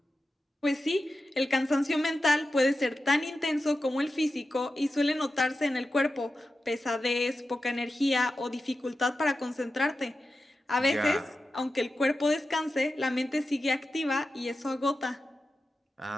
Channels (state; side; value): normal; both; correlation 0.91